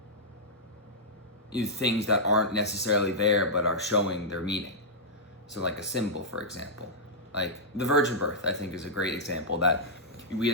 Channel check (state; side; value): normal; both; correlation -0.09